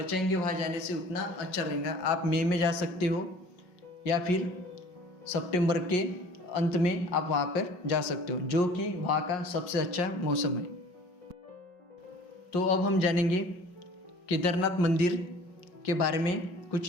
वहाँ जाने से, उतना अच्छा रहेगा। आप मई में जा सकते हो या फिर सितंबर के अंत में आप वहाँ पर जा सकते हो, जो कि वहाँ का सबसे अच्छा मौसम है। तो अब हम जानेंगे केदारनाथ मंदिर के बारे में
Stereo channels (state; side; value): late; right; 5.4 ms